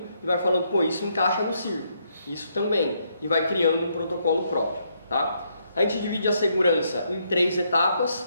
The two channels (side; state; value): both; inverted; correlation -0.75